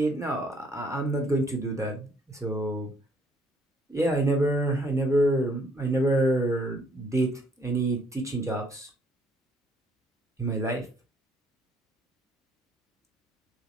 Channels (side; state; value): both; normal; correlation 0.65